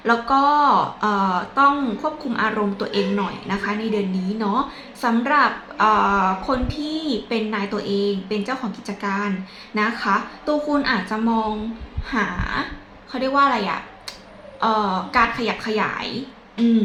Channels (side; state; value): both; identical; correlation 1.00